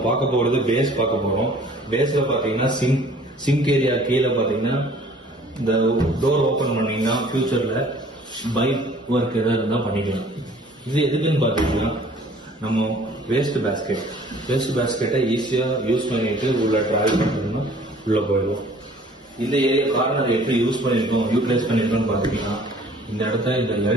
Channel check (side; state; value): both; normal; correlation 0.53